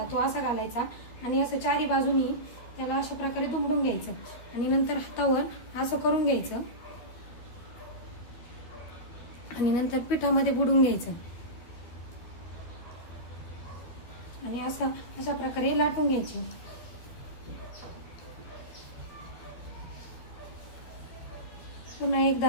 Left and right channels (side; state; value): right; late; 13 ms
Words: तो असा घालायचा आणि असं चारी बाजूनी त्याला अशा प्रकारे दुमडून घ्यायचं आणि नंतर हातावर असं करून घ्यायचं आणि नंतर पिठामध्ये बुडून घ्यायचं आणि अशा प्रकारे लाटून घ्यायचे. पुन्हा